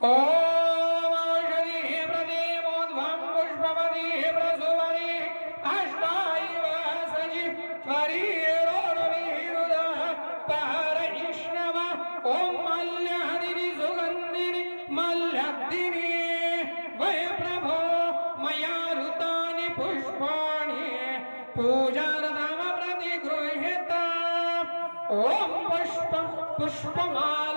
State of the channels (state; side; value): inverted; both; correlation -1.00